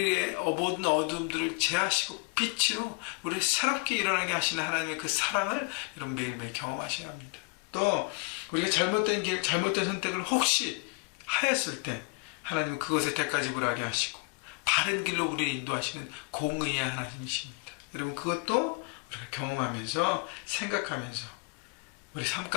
모든 어둠들을 제하시고 빛으로 우리를 새롭게 일어나게 하시는 하나님의 그 사랑을 여러분 매일매일 경험하셔야 합니다. 또 우리가 잘못된 길, 잘못된 선택을 혹시 하였을 때 하나님은 그것에 대가지불하게 하시고 바른 길로 우리를 인도하시는 공의의 하나님이십니다. 여러분 그것도 우리가 경험하면서 생각하면서 우리 삶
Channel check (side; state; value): right; quieter; 30.4 dB